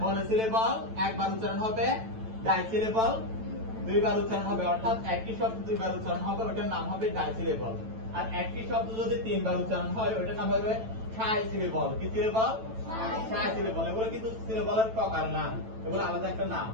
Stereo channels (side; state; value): left; late; 9.0 ms